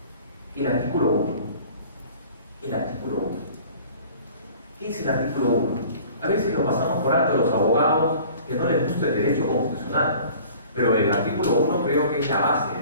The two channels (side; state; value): both; inverted; correlation -0.48